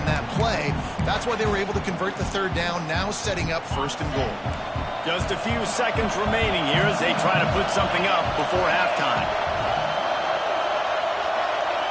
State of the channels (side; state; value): both; identical; correlation 1.00